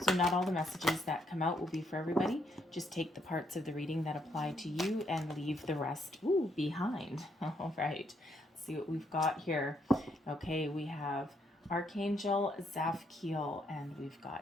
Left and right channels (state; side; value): normal; both; correlation 0.74